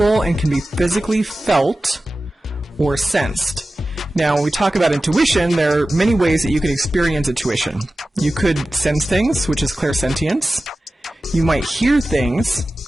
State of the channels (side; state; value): both; normal; correlation 0.95